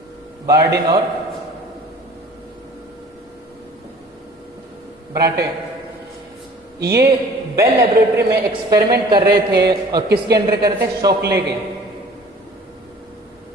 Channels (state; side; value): normal; both; correlation 0.49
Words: बार्डिन और ब्राटे, ये बेल लेबोरेटरी में एक्सपेरिमेंट कर रहे थे। और किसके अंडर कर रहे थे? शोकले के।